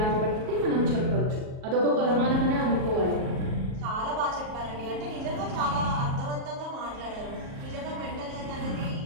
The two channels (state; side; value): late; left; 38 ms